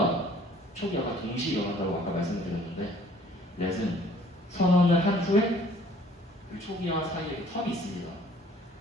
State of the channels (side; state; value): both; normal; correlation 0.55